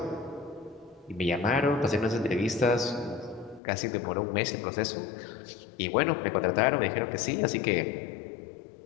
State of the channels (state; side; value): drops out; right; at 3.6 s